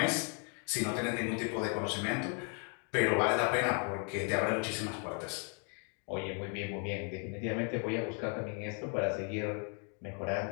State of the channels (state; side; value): quieter; right; 38.7 dB